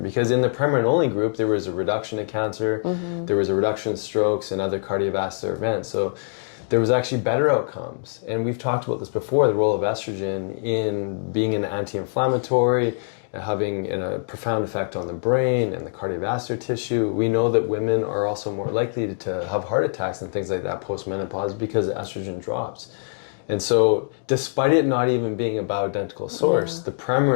in the Premarin only group, there was a reduction in cancer, there was a reduction in strokes and other cardiovascular events. So there was actually better outcomes. And we've talked about this before, the role of estrogen in being an anti-inflammatory, having a profound effect on the brain and the cardiovascular tissue. We know that women are also more likely to have heart attacks and things like that post-menopause because estrogen drops. And so despite it not even being a bioidentical source, the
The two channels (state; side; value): silent; right; digital silence